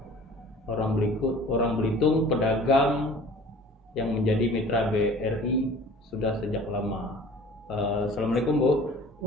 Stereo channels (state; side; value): normal; both; correlation 0.46